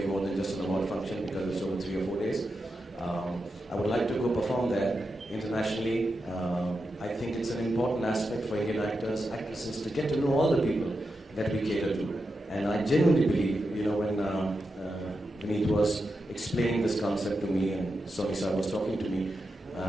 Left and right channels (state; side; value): normal; both; correlation 0.88